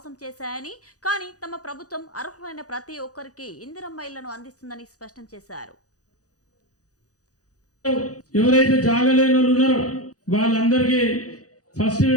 చేశాయని, కానీ తమ ప్రభుత్వం అర్హులైన ప్రతి ఒక్కరికి ఇందిరమ్మ ఇళ్లను అందిస్తుందని స్పష్టం చేశారు. ఎవరైతే జాగా లేని వాళ్ళు ఉన్నారో వాళ్ళందరికీ ఫస్ట్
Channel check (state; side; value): late; right; 0.67 ms